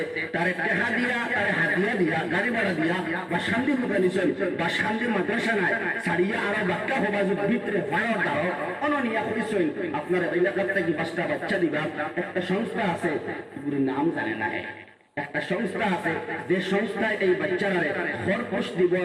তারে টেহা দিয়া, তারে হাতিয়া দিয়া, গাড়ি ভাড়া দিয়া বা শান্তি মুখানিছেন বা শান্তি মাদ্রাসা নাই ছাড়িয়া আরো বাক্কা হবাজুর ভিতরে ফায়ার দাও অননিয়া করেছেন। আপনার এলাকার থেকে 5টা বাচ্চা দিবা, একটা সংস্থা আছে এগুলির নাম জানে না, একটা সংস্থা আছে যে সংস্থায় এই বাচ্চারা খরপোশ দিব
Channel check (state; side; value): identical; both; correlation 1.00